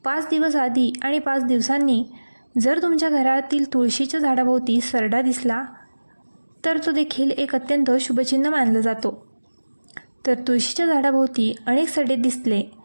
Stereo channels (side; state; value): both; inverted; correlation -1.00